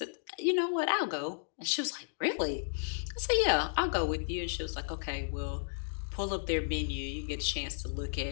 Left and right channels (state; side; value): silent; right; digital silence